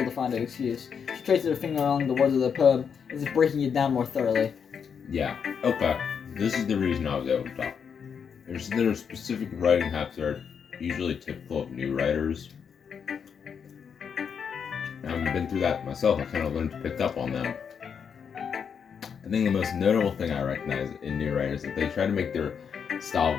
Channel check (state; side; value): quieter; right; 6.9 dB